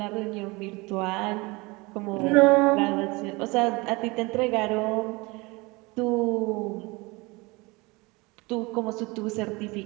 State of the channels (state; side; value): quieter; left; 24.7 dB